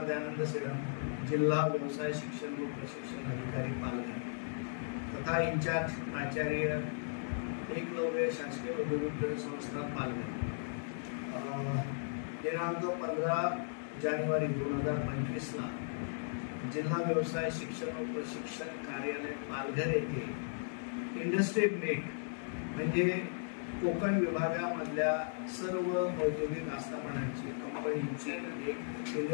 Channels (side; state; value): right; silent; digital silence